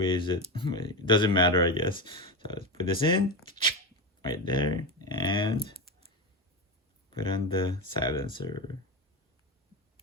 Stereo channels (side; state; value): both; normal; correlation 0.16